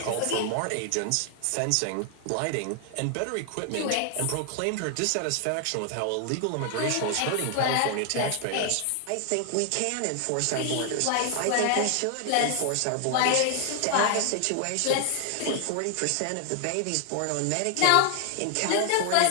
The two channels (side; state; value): both; different; correlation 0.00